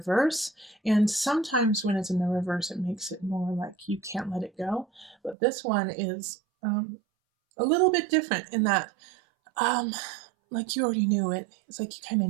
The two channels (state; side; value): drops out; left; at 5.4 s